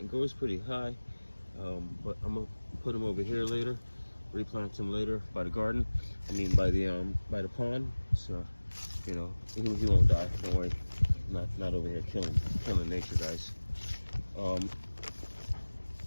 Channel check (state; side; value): inverted; both; correlation -1.00